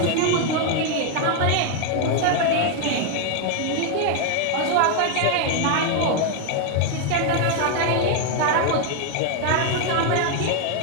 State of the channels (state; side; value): different; both; correlation 0.01